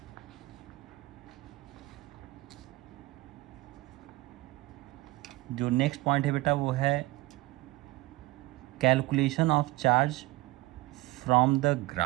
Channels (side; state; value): left; quieter; 20.4 dB